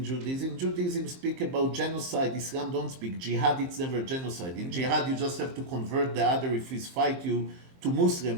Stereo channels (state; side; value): late; left; 23 ms